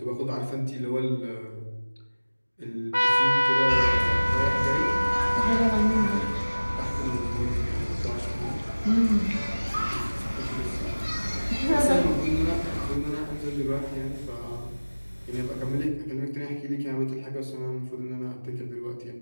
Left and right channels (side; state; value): both; inverted; correlation -1.00